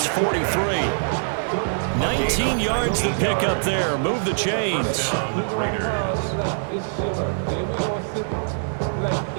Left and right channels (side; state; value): left; silent; 56 dB below the other